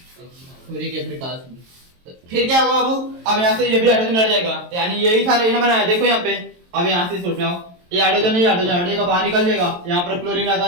के प्रकाश में। फिर क्या होगा बाबू? अब यहाँ से ये भी हाइड्रोजन हट जाएगा, यानी यही था यही बनाया। देखो यहाँ पे, अब यहाँ से सोच रहा हूँ ये हाइड्रोजन हटेगा, बाहर निकल जाएगा। यहाँ पर क्लोरीन आता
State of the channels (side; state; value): left; late; 23 ms